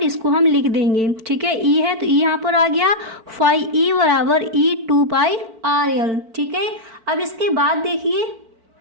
इसको हम लिख देंगे। ठीक है, E है तो E यहाँ पर आ गया, फाई E बराबर E 2 पाई RL। ठीक है, अब इसके बाद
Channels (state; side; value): late; left; 4.5 ms